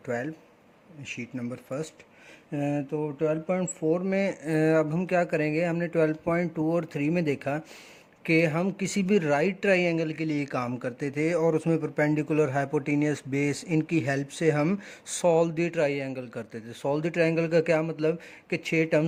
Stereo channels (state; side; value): identical; both; correlation 1.00